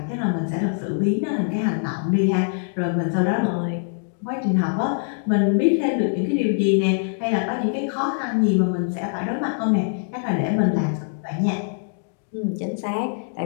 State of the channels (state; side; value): silent; right; digital silence